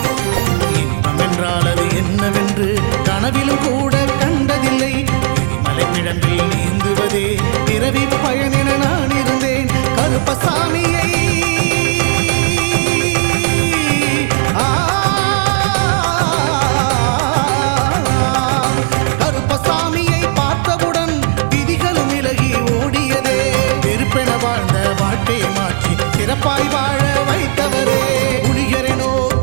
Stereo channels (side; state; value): left; silent; digital silence